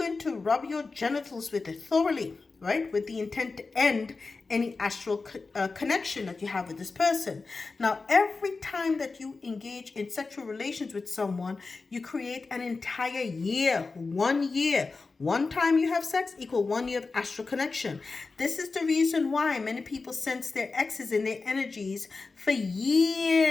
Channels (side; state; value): right; quieter; 4.0 dB